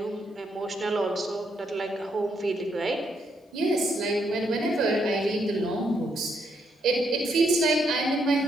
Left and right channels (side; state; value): both; normal; correlation 0.76